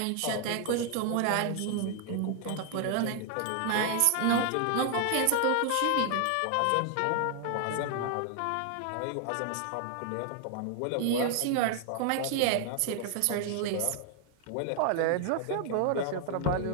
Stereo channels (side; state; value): both; different; correlation 0.00